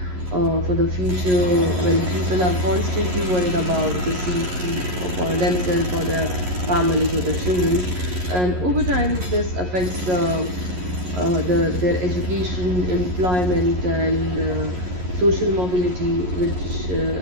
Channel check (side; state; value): left; late; 11 ms